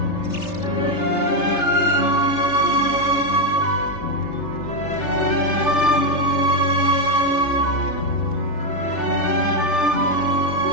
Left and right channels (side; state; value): right; late; 3.3 ms